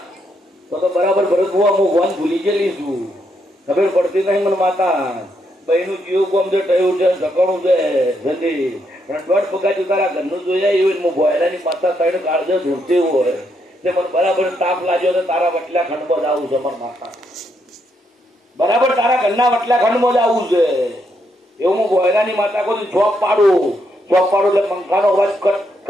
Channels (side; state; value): both; normal; correlation 0.77